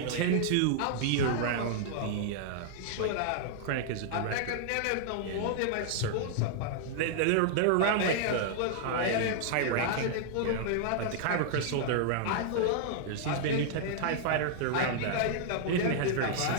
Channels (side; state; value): both; different; correlation -0.01